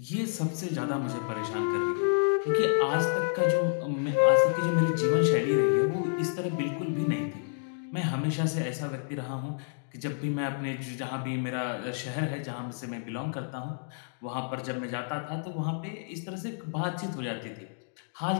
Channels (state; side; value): silent; right; digital silence